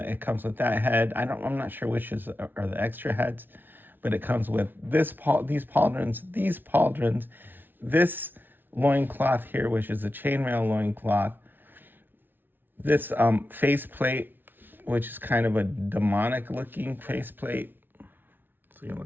with that head. I'm not sure which are the extra heads, but it comes with these pauldrons, this loincloth here, which is a chainmail loincloth, this faceplate, which is kind of a demonic looking faceplate. So you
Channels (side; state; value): left; late; 0.095 ms